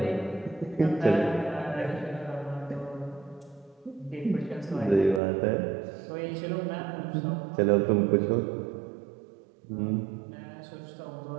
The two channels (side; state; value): left; drops out; at 5.2 s